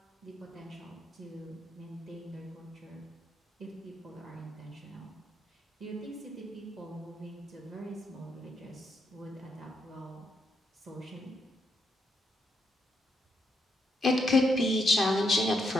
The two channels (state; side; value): normal; both; correlation 0.79